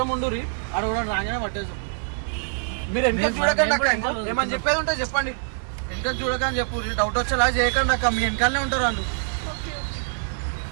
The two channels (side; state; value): left; silent; 62 dB below the other